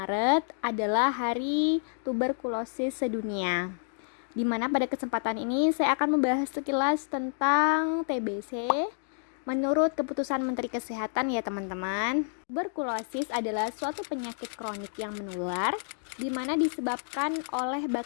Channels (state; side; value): silent; right; digital silence